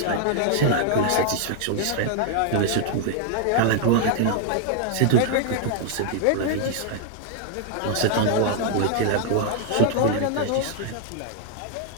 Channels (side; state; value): both; different; correlation 0.00